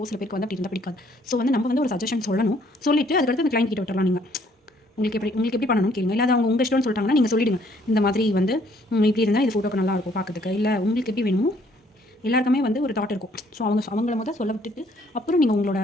சில பேருக்கு வந்து அப்படி இருந்தால் பிடிக்காது. ஸோ வந்து நம்ம வந்து ஒரு சஜஷன் சொல்லணும். சொல்லிவிட்டு அதுக்கடுத்து அந்த கிளைண்ட் கிட்ட விட்டுறலாம். நீங்கள் உங்களுக்கு எப்படி பண்ணணும்னு கேளுங்க. இல்லை அவங்க உங்கள் இஷ்டம்னு சொல்லிட்டாங்கன்னா நீங்கள் சொல்லிவிடுங்க. இந்த மாதிரி வந்து இப்படி இருந்தால் இது ஃபோட்டோக்கு நல்லா இருக்கும் பார்க்கறதுக்கு. இல்லை உங்களுக்கு எப்படி வேணுமோ எல்லாருக்குமே வந்து ஒரு தாட் இருக்கும். ஸோ அவங்கள முதல் சொல்ல விட்டுட்டு அப்புறம் நீங்கள் உங்களோட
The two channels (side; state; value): both; normal; correlation 0.64